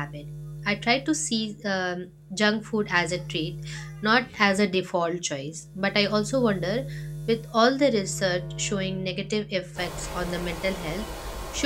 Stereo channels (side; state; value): both; identical; correlation 1.00